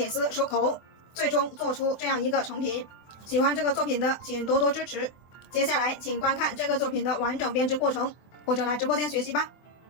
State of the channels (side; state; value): right; late; 24 ms